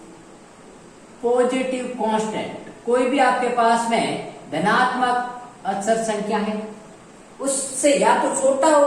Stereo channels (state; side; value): identical; both; correlation 1.00